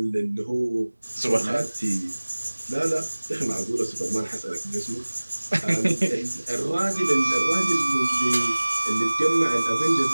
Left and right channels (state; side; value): inverted; both; correlation -1.00